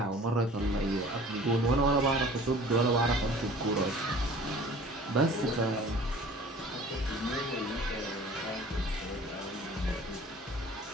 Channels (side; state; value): both; normal; correlation 0.46